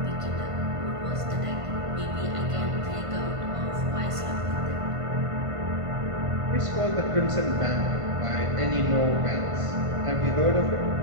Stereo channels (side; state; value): left; late; 1.5 ms